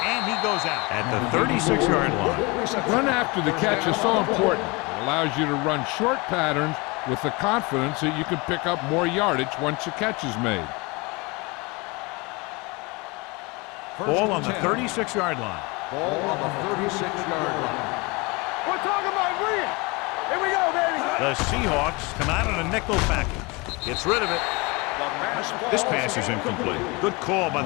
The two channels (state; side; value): quieter; right; 26.4 dB